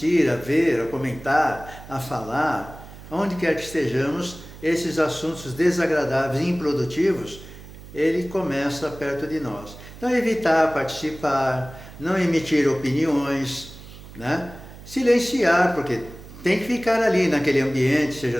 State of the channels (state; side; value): noise; right; hum, 17 dB below the sound